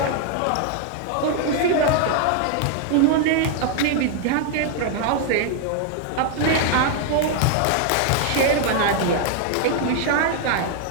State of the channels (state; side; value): different; both; correlation 0.00